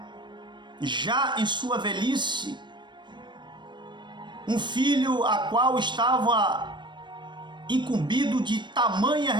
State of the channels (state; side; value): late; left; 0.22 ms